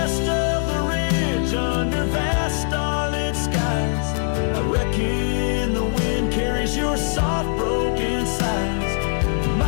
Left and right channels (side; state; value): right; silent; 64 dB below the other